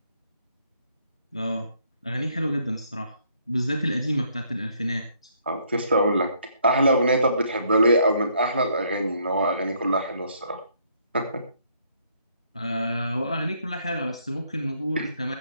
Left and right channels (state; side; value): inverted; both; correlation -0.68